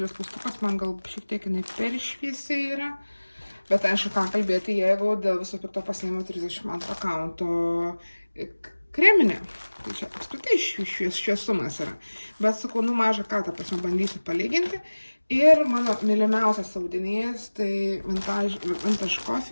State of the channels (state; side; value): inverted; both; correlation -1.00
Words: klaustukas, man gal šiek tiek jinai per šviesiai yra. Bet aišku, ką kalbėti, jeigu dėl viso pikto pasiėmiau 32 kaunto kreminė. Tai čia apskritai šviesumas yra. Bet sakau, mažą ką, ta prasme, bandysiu palyginti. Ir mano mylimiausias audinys, tai Vintage